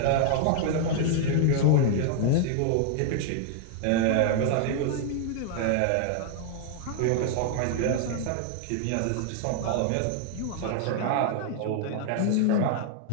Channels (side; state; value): both; different; correlation 0.00